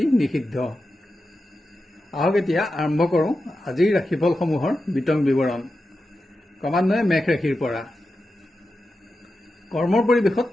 নিষিদ্ধ। আহক এতিয়া আৰম্ভ কৰোঁ আজিৰ ৰাশিফলসমূহৰ বিতং বিৱৰণ। ক্ৰমান্বয়ে মেঘ ৰাশিৰ পৰা। কৰ্মৰ পৰিৱেশত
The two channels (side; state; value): both; normal; correlation 0.90